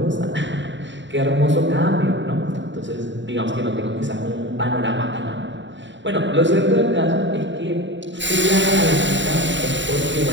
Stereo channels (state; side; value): late; left; 0.54 ms